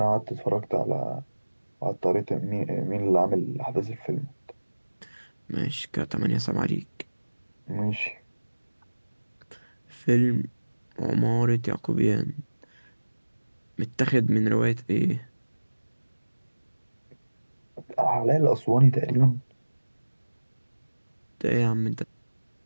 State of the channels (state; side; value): inverted; both; correlation -1.00